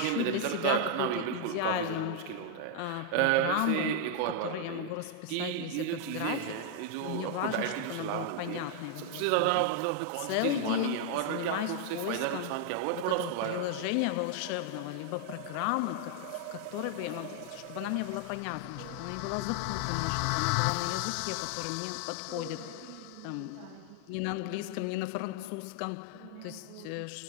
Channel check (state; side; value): different; both; correlation 0.00